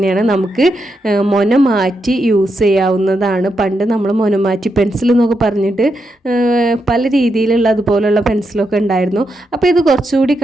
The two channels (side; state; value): both; normal; correlation 0.83